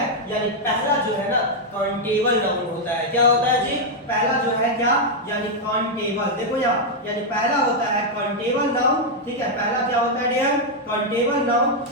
यानी पहला जो है ना काउंटेबल नाउन होता है। क्या होता है जी, पहला जो है क्या, यानी काउंटेबल, देखो यहाँ, यानी पहला होता है काउंटेबल नाउन, ठीक है। पहला क्या होता है डियर, काउंटेबल नाउन,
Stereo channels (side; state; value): both; normal; correlation -0.01